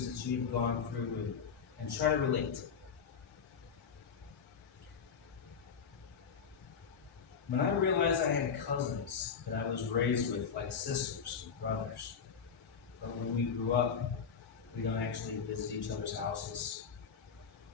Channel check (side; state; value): right; quieter; 6.6 dB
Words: that you've gone through and try to relate. When I realized I had cousins that I was raised with, like sisters and brothers, but when we grew up, we don't actually visit each other's houses.